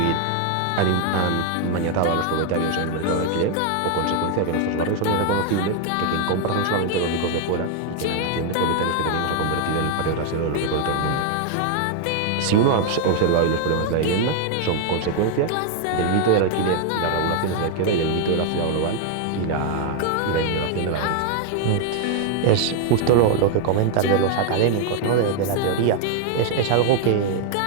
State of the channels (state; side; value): different; both; correlation 0.00